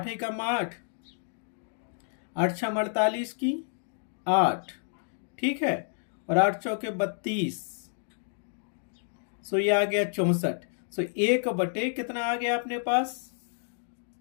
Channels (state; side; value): silent; right; digital silence